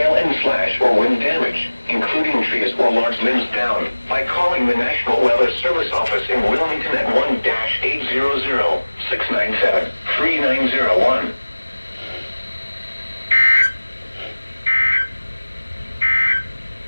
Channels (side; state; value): both; inverted; correlation -1.00